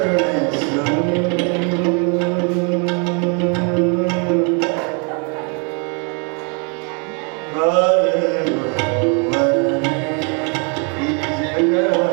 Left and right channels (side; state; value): left; quieter; 36.5 dB